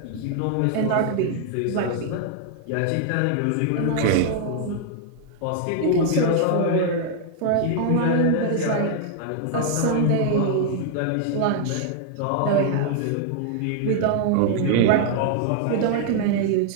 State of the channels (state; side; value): different; both; correlation 0.00